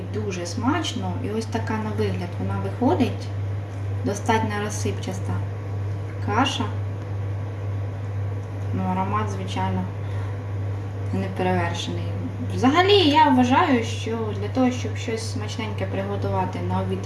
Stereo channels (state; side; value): identical; both; correlation 1.00